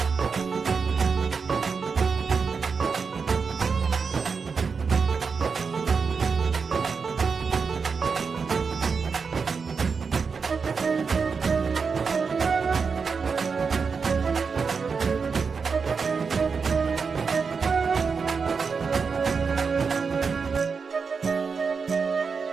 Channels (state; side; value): quieter; left; 5.3 dB